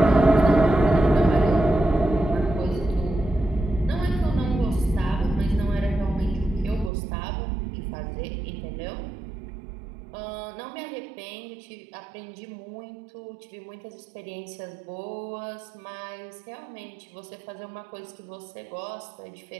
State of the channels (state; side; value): drops out; left; at 6.9 s